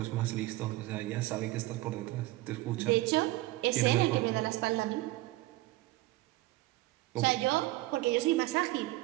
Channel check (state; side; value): quieter; left; 18.4 dB